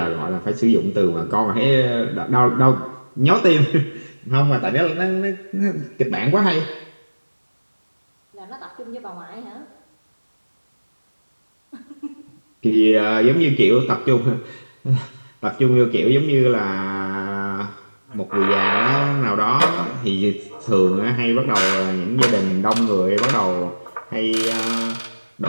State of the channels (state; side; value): inverted; both; correlation -1.00